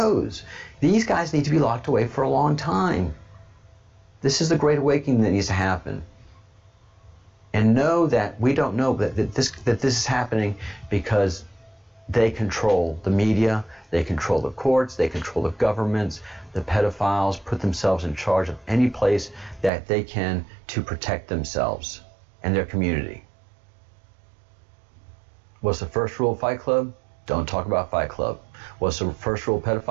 These guys need to be locked away for a long time. This is the great awakening that needs to happen. And know that we don't know that this is happening because they control the media, they control the courts, they control the governments. The pedophiles put themselves in charge of any place that they can to protect themselves and their community. What's the first rule of Fight Club? Don't talk about Fight Club. What's the first rule of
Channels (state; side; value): drops out; left; at 19.7 s